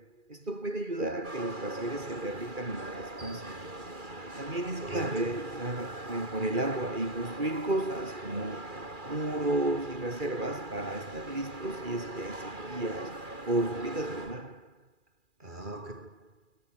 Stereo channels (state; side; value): late; left; 2.4 ms